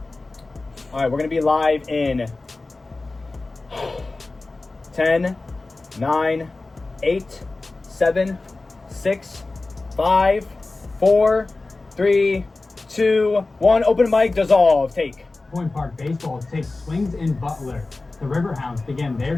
All right, we're going to be live in 10, 9, 8, 7, 6, 5, 4, 3, 2, 1. Open mic, dissolve, take. Point Park Baseball takes swings in Butler. The Riverhounds begin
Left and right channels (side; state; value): right; quieter; 3.3 dB